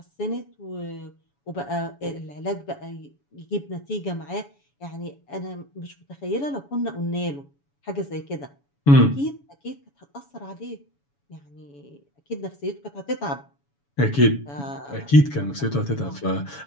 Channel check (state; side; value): late; right; 7.1 ms